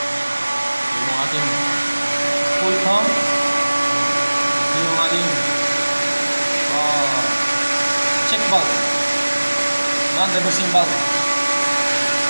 Ito yung ating pool pump. Ito yung ating check bulb. Non-reversing bulb.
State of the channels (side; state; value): both; inverted; correlation -1.00